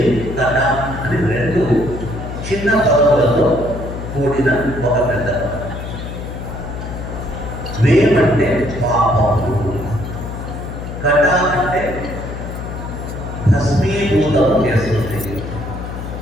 అని రెండు చిన్న పర్వతాలతో కూడిన ఒక పెద్ద. వేమంటే పాపము, కట అంటే భస్మీభూతం చేస్తుంది.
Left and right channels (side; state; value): left; noise; hum, 8 dB below the sound